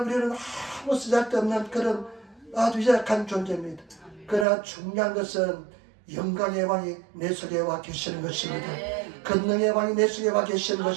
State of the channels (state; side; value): drops out; left; at 4.5 s